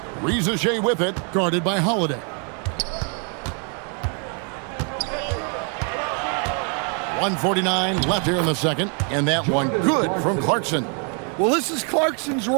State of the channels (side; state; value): left; quieter; 39.6 dB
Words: Reza Shea with it, guarded by Holiday. .149 left here in the second, and that one good from Clarkson. Well, this is Clarkson's